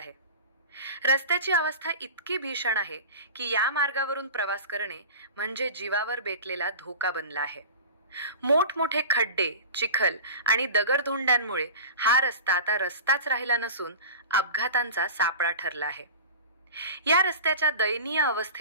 रस्त्याची अवस्था इतकी भीषण आहे की या मार्गावरून प्रवास करणे म्हणजे जीवावर बेतलेला धोका बनला आहे। मोठमोठे खड्डे, चिखल आणि दगडधोंड्यांमुळे हा रस्ता आता रस्ताच राहिला नसून अपघातांचा सापळा ठरला आहे। या रस्त्याच्या दयनीय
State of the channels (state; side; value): inverted; both; correlation -0.35